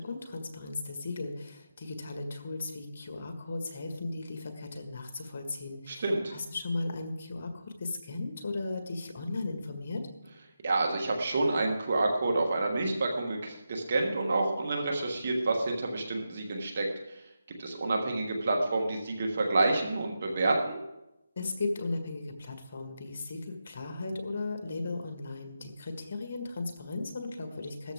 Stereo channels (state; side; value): inverted; both; correlation -0.88